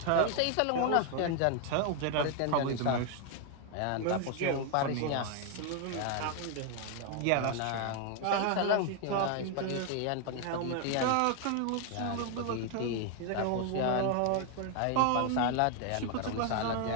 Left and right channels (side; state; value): both; different; correlation 0.01